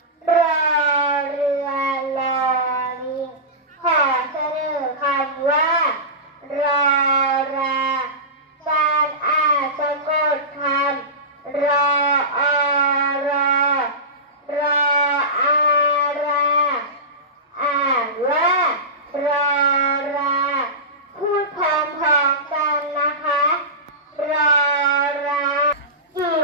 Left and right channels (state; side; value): normal; both; correlation -0.20